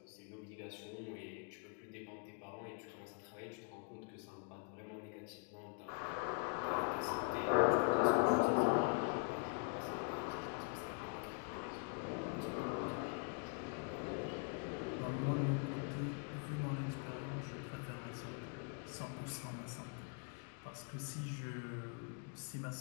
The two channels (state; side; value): quieter; right; 37.0 dB